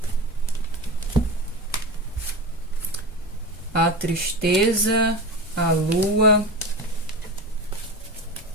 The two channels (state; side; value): normal; both; correlation 0.25